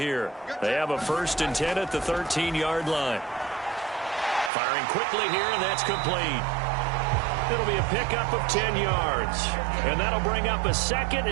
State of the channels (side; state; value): left; drops out; at 4.5 s